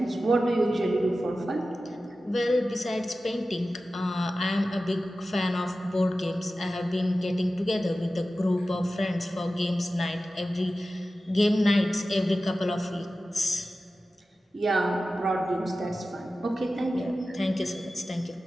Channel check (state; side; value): normal; both; correlation 0.94